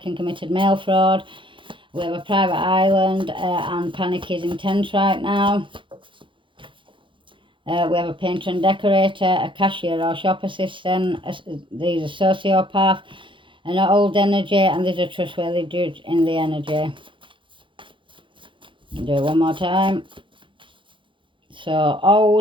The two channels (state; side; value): late; left; 0.24 ms